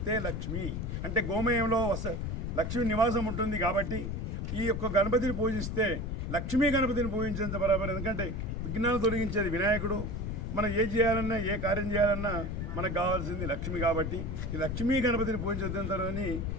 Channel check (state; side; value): noise; left; rumble, 3 dB below the sound